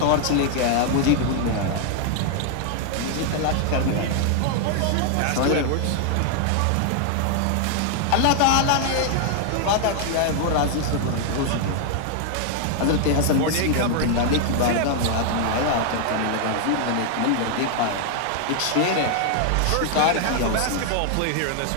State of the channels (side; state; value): both; different; correlation 0.00